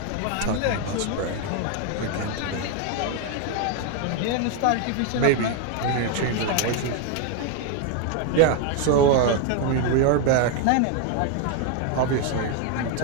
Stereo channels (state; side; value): different; both; correlation 0.01